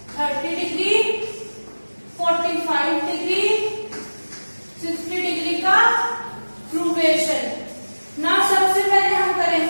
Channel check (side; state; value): both; inverted; correlation -1.00